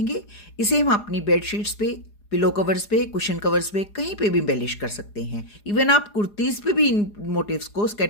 इसे हम अपनी बेडशीट्स पे, पिलो कवर्स पे, कुशन कवर्स पे, कहीं पे भी एम्बेलिश कर सकते हैं। इवन आप कुर्तीज़ पे भी इन मोटिव्स को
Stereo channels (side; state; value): right; late; 4.8 ms